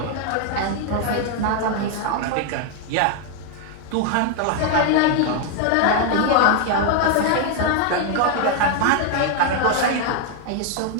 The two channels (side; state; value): both; different; correlation 0.01